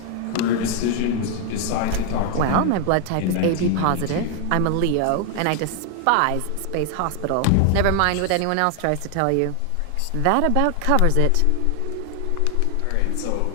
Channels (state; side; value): different; both; correlation 0.00